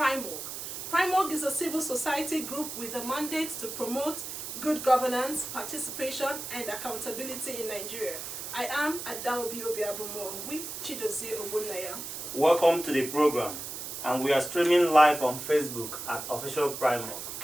PRIMOG is a civil society group with a mandate to promote good governance, participation and accountability in Nigeria. I am Adaobi Obiabumo with Chidozie Ogbonnaya. Welcome to the program, and we are streaming live on Facebook at Official PRIMOG.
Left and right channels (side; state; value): right; noise; hiss, 7 dB below the sound